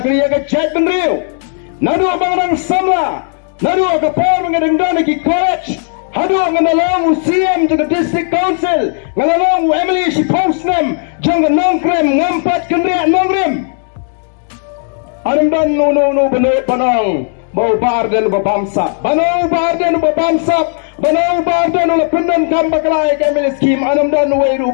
ka jet benriu. Nadu banga samla. Nadu ka por banga dengdana ki college. Hadu nganalong UCM jaga district council nganalong Emily si postnem jang nongkrem ngampat kenrea nongrim. Anam dan no benar panang bau bar dan babamsap banau bar dan babamsap banau bar dan oleh pendan kambaklai kemil skim anam dan weiru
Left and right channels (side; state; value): right; silent; 56 dB below the other